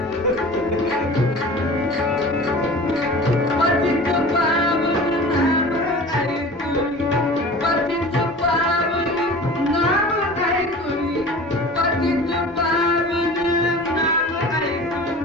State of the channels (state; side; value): normal; both; correlation 0.39